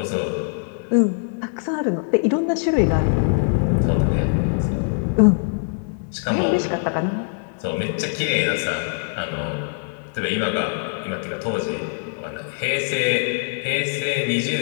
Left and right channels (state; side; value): silent; right; digital silence